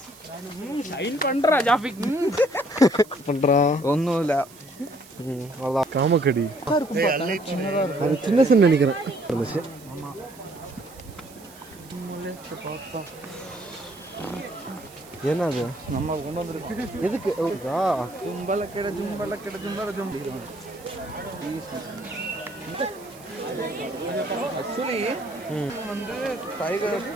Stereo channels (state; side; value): noise; right; hiss, 22 dB below the sound